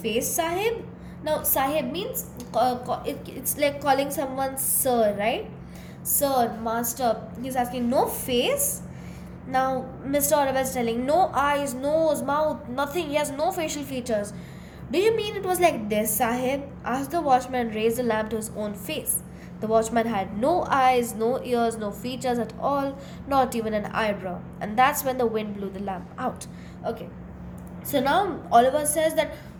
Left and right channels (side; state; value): both; identical; correlation 1.00